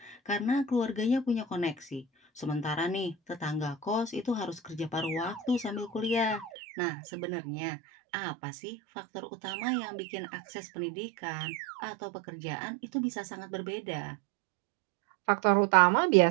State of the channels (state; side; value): drops out; left; at 6.5 s